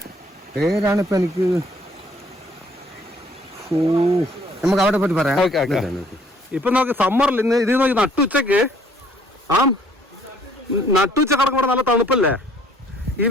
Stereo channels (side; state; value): both; normal; correlation 0.61